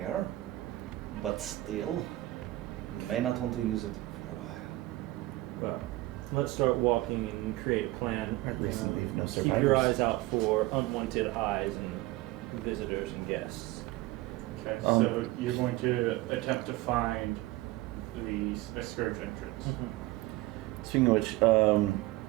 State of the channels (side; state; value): left; quieter; 18.6 dB